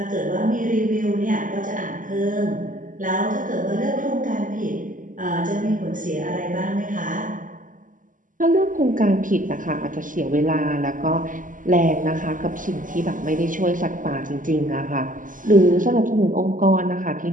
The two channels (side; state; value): left; late; 0.38 ms